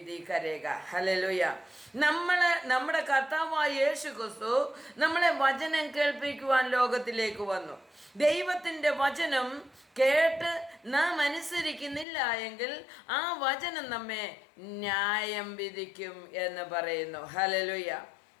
करेगा। ഹല്ലേലൂയ। നമ്മുടെ കർത്താവായ യേശു ക്രിസ്തു നമ്മളെ വചനം കേൾപ്പിക്കുവാൻ ലോകത്തിലേക്ക് വന്നു. ദൈവത്തിൻ്റെ വചനം കേട്ട് നാം അനുസരിക്കുന്നില്ല എങ്കിൽ ആ വചനം നമ്മെ ന്യായം വിധിക്കും എന്ന് പറയുന്നു. ഹല്ലേലൂയ.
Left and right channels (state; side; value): drops out; right; at 12.1 s